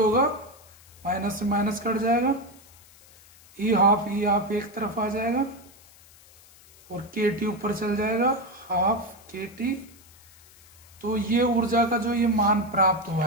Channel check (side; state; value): left; noise; hiss, 25 dB below the sound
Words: माइनस से माइनस कट जाएगा, ई हाफ एक तरफ आ जाएगा और के टी ऊपर चल जाएगा, हाफ के टी। तो ये ऊर्जा का जो ये मान प्राप्त हुआ